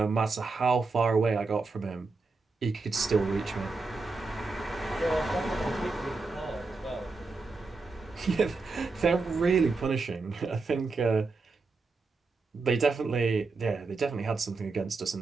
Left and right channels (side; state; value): left; quieter; 3.9 dB